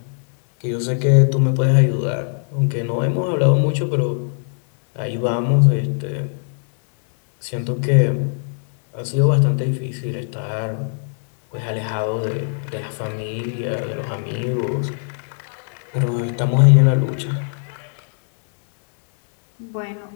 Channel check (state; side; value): silent; right; 64 dB below the other